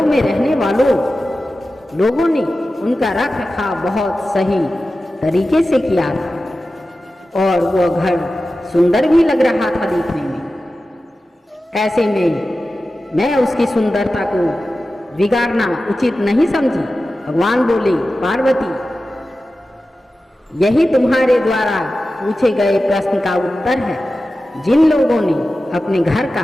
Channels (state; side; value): normal; both; correlation 0.94